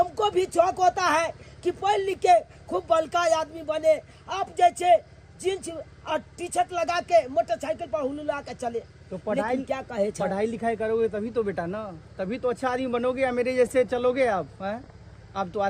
भी शौक होता है कि पढ़ लिख के खूब बड़का आदमी बने, आप जैसे जींस और टी शर्ट लगा के मोटरसाइकिल पर हुलुला के चले। तो पढ़ाई क्या कहे चल? पढ़ाई लिखाई करोगे तभी तो बेटा ना, तभी तो अच्छा आदमी बनोगे या मेरे जैसे चलोगे आप हैं? आप तो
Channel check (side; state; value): both; identical; correlation 1.00